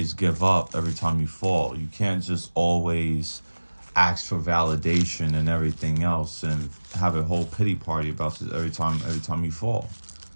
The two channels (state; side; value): inverted; both; correlation -1.00